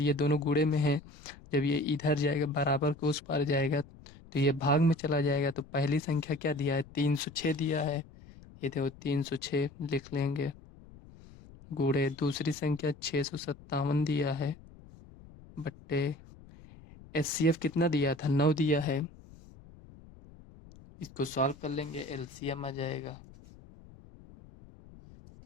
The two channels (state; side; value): noise; left; rumble, 21 dB below the sound